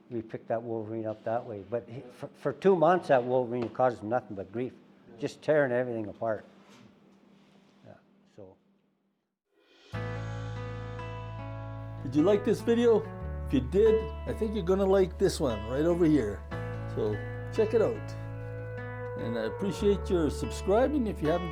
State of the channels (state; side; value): identical; both; correlation 1.00